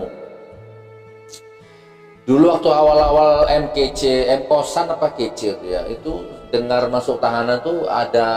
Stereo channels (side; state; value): both; identical; correlation 1.00